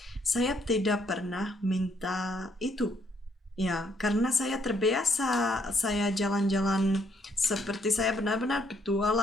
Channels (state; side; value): normal; both; correlation 0.71